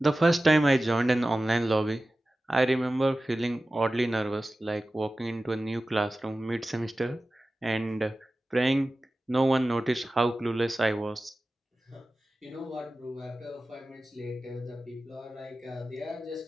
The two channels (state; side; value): normal; both; correlation 0.95